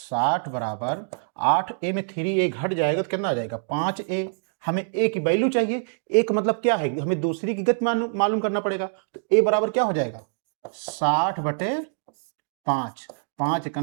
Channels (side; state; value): left; silent; digital silence